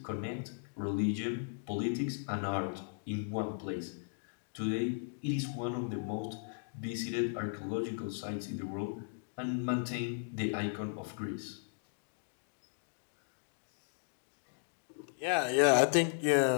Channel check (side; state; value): right; silent; digital silence